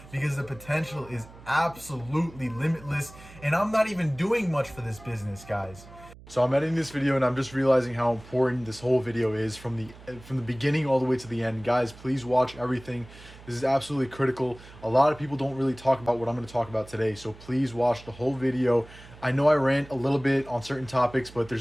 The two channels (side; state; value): right; noise; hum, 20 dB below the sound